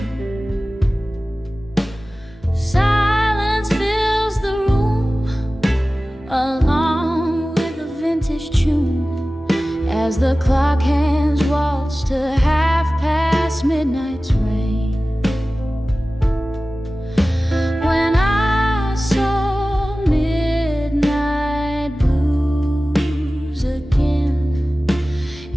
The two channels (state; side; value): normal; both; correlation 0.96